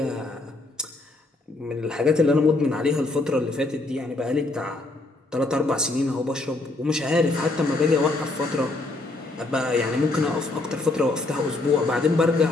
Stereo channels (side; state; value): right; quieter; 3.0 dB